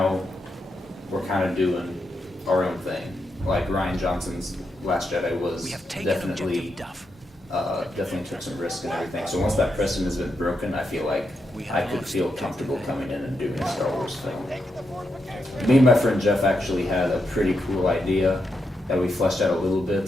we're kind of doing our own thing. Like, Rian Johnson's Last Jedi was We have taken definitely, objective Duff. definitely took some risk and everything. So once that precedent has been broken, I feel like I could feel comfortable coming in and doing a Star Wars film. Me and my friend Jeff actually had a pretty cool idea that we fleshed out a little bit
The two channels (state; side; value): normal; both; correlation 0.83